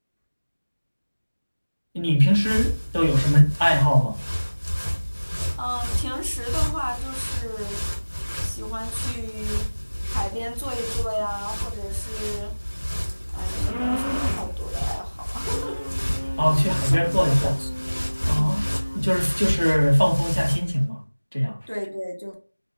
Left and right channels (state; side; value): inverted; both; correlation -1.00